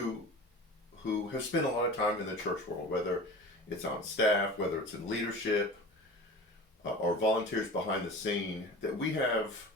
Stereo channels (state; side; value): normal; both; correlation 0.36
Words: have spent a lot of time in the church world, whether it's on staff, whether it's in leadership, or volunteers behind the scene, that we have